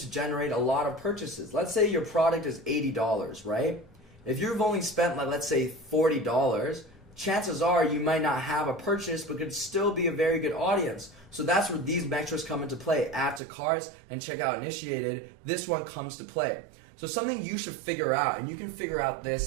generate a lot of purchases. Let's say your product is $80, right? If you've only spent, let's say, $40, chances are you might not have a purchase, but could still be a very good audience. So that's where these metrics come into play. Add to carts and checkout initiated. This one comes to play. So something you should figure out, and you can figure out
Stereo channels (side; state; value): left; drops out; at 13.4 s